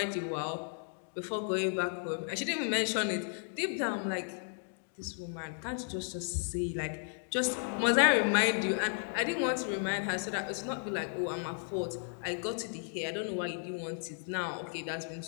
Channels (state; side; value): silent; right; 55 dB below the other